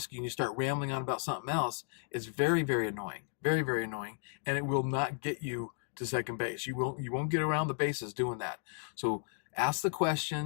you, and you start rambling on about something else, it's very, very annoying. Very, very annoying. And it will not get you to second base. You won't get around the bases doing that. So ask the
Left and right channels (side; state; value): right; silent; digital silence